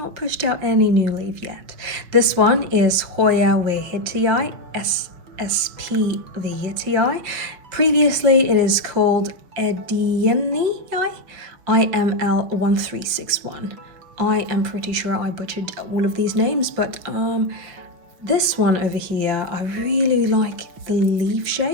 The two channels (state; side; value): late; left; 5.8 ms